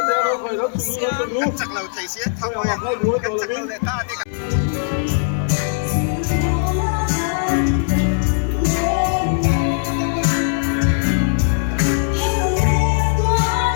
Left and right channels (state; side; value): silent; right; digital silence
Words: đầu chắc là thầy sẽ thằng ngồi chắc là ta đi